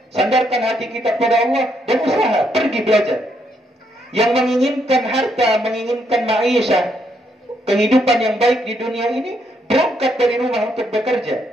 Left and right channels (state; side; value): normal; both; correlation 0.75